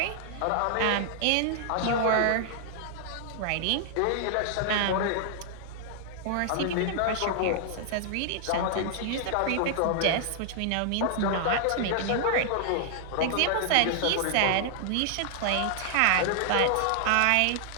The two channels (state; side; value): different; both; correlation 0.00